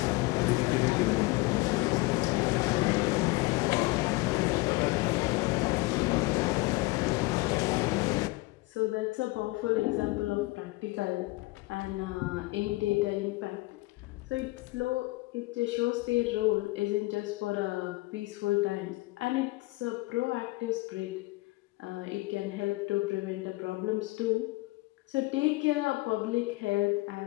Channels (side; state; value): right; quieter; 22.3 dB